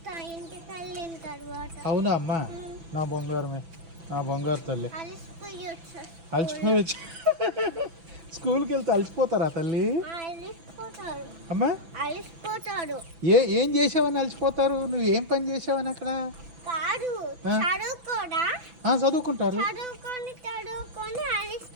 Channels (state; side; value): late; left; 6.0 ms